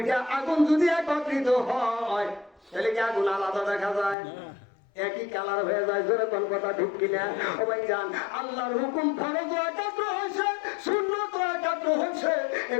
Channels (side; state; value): right; drops out; at 4.2 s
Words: আগুন যদি একত্রিত হয় তাহলে কি আগুন আলাদা দেখা যায়? একই কালার হয়ে যায়। জোরে কোন কথা ঠিক কিনা? ও ভাইজান আল্লাহর হুকুম ফরজ একাত্র হয়েছে, সুন্নাত একাত্র হয়েছে।